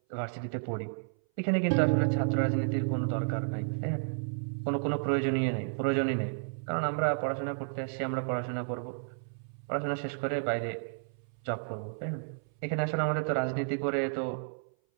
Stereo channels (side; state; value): left; silent; 57 dB below the other